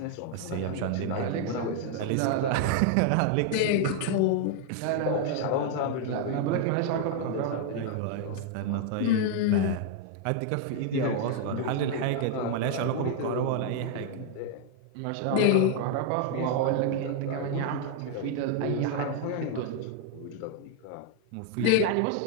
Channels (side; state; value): both; different; correlation 0.00